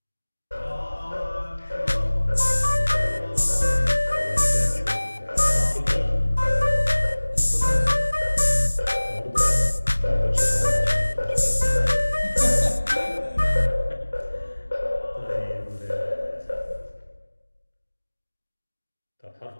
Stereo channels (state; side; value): inverted; both; correlation -1.00